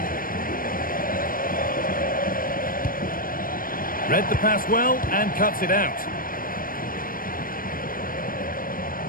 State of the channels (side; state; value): right; late; 0.41 ms